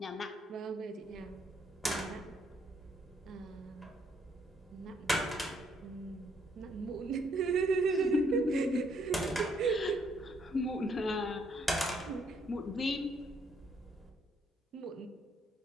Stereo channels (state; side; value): normal; both; correlation 0.70